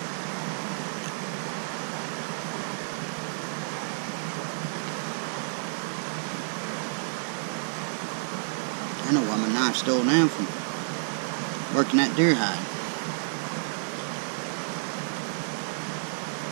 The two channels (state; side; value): silent; left; digital silence